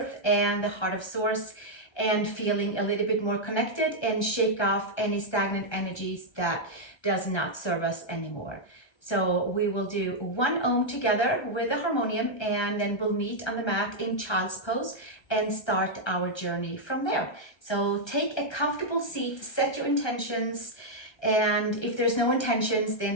and the heart of source, and feeling a little bit more connected and shake off any stagnant energies that does not serve us anymore. So we will do 1 Om together with the harmonium, and then we'll meet on the mat in child's pose and start our journey from there. So take a comfortable seat, set your intentions, and if there's no intentions, the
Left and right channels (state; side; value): late; right; 1.3 ms